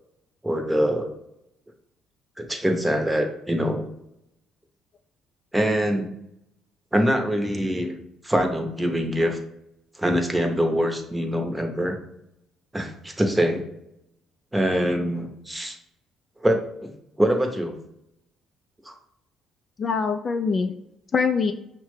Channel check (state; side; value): normal; both; correlation 0.87